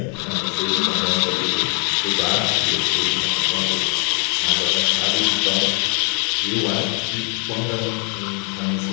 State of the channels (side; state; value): right; quieter; 39.8 dB